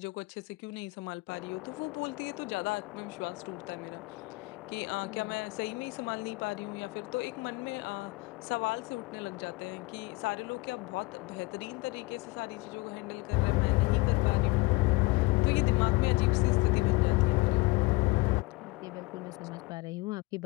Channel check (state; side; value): quieter; right; 23.3 dB